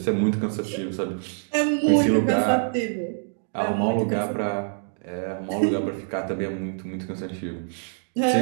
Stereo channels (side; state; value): left; silent; digital silence